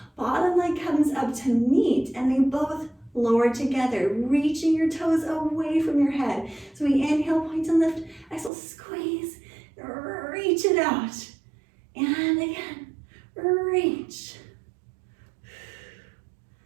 Bottom leg comes up to meet and they both lower together, reaching your toes away from your head. So we inhale, point and lift, exhale, squeeze, reach it out. And again, reach.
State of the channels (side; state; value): left; drops out; at 8.5 s